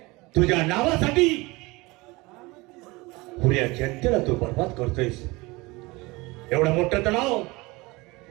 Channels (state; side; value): quieter; left; 23.2 dB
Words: तुझ्या नावासाठी पुऱ्या जनतेला तू बर्बाद करतोयस. एवढं मोठं तलाव,